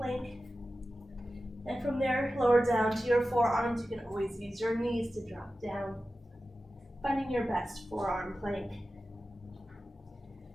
And from there, lower down to your forearms. You can always use your knees to drop down. Finding your best forearm plank.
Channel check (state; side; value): normal; both; correlation 0.94